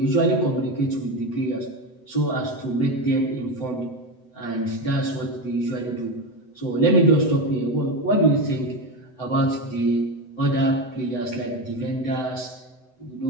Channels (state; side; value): late; right; 7.9 ms